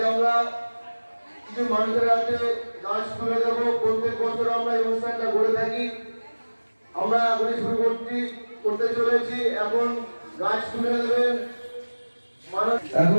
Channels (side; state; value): both; inverted; correlation -1.00